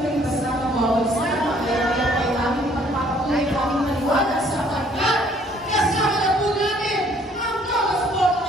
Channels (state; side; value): normal; both; correlation 0.61